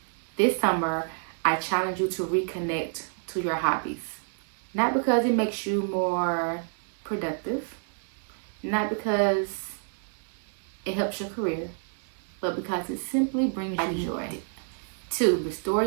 This summer, I challenge you to reconnect to your hobbies. Not because it makes you more productive, not because it helps your career, but because it simply brings you joy. 2, restore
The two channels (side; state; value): left; silent; 59 dB below the other